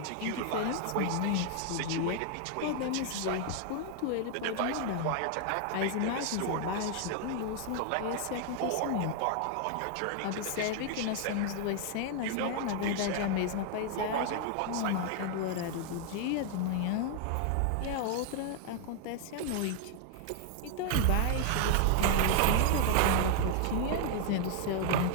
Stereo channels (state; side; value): different; both; correlation 0.00